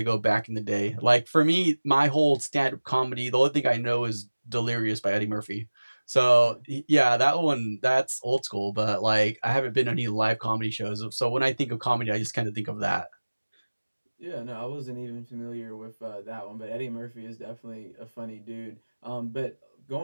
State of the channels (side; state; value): both; inverted; correlation -1.00